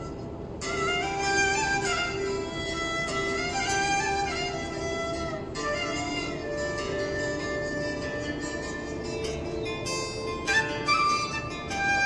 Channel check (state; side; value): identical; both; correlation 1.00